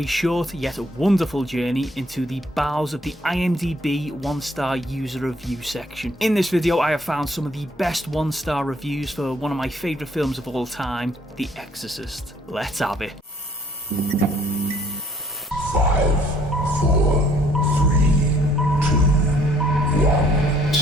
short yet wonderful journey into the bowels of the IMDb 1-star user review section. In this video I have found some of the best 1-star reviews for one of my favourite films of all time, The Exorcist. Let's have it. 5, 4, 3, 2, 1,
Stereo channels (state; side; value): normal; both; correlation 0.62